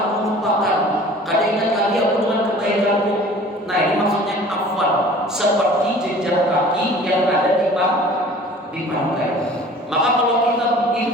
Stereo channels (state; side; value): normal; both; correlation 0.47